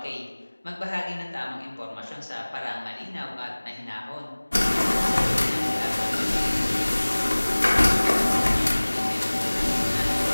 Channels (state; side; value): inverted; both; correlation -1.00